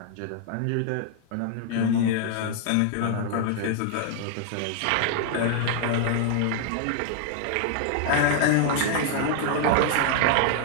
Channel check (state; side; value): different; both; correlation 0.00